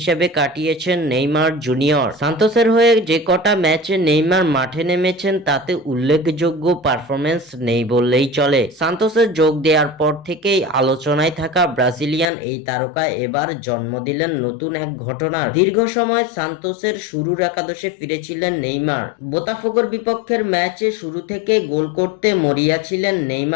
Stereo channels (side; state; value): right; drops out; at 12.2 s